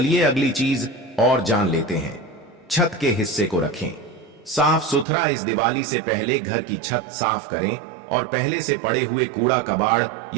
अगली चीज और जान लेते हैं। छत के हिस्से को रखें साफ सुथरा। इस दिवाली से पहले घर की छत साफ करें और पहले से पड़े हुए कूड़ा कबाड़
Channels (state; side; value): drops out; left; at 5.1 s